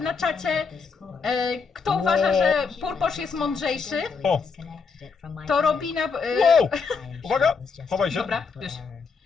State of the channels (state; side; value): quieter; right; 5.3 dB